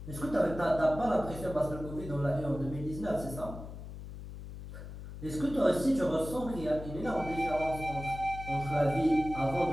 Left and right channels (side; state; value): left; noise; hum, 11 dB below the sound